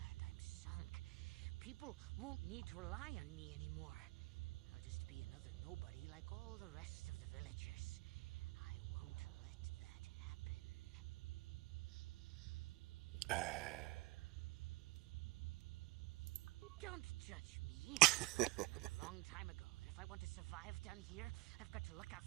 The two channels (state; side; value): quieter; left; 22.7 dB